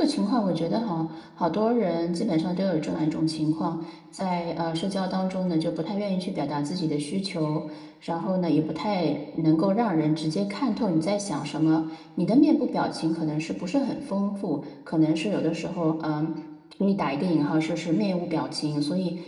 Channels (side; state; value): both; identical; correlation 1.00